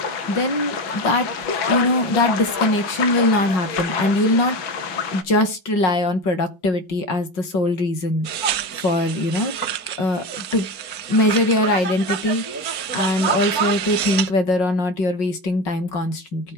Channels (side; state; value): right; late; 5.4 ms